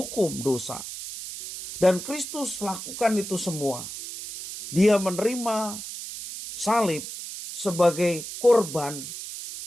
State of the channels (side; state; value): right; noise; hiss, 9 dB below the sound